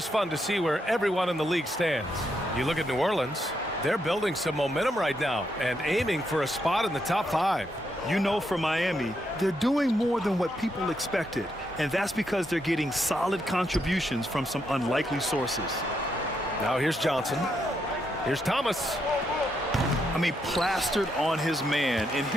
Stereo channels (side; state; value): both; normal; correlation 0.79